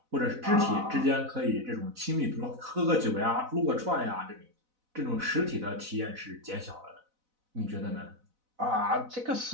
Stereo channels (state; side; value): late; left; 4.0 ms